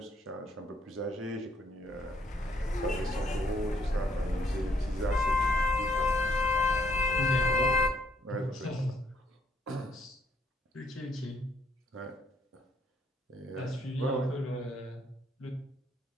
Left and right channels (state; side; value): normal; both; correlation 0.70